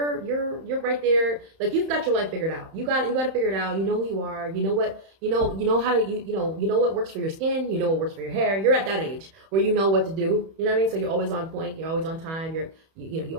right there. Like you've got your life figured out. You got to figure it out. You know who you are. You know what you know how to you know what works for your skin. You know what works for your hair. You're at that age where you know what to do. You know what I mean? So you're always on point. You're always on time. You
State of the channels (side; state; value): left; late; 31 ms